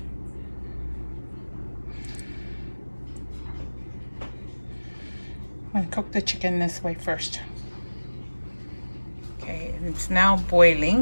I'm going to cook the chicken this way first. Okay, and it's now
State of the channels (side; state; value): both; inverted; correlation -1.00